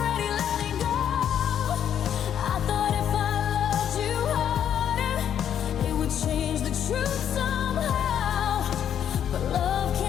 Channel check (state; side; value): quieter; right; 9.4 dB